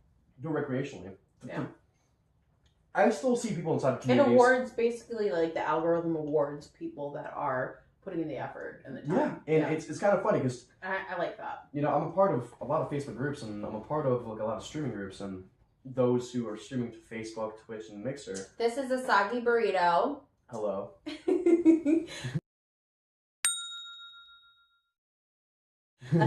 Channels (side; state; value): both; identical; correlation 1.00